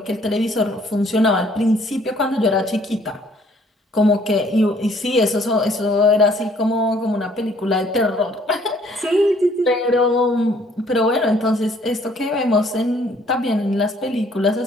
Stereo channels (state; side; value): normal; both; correlation 0.61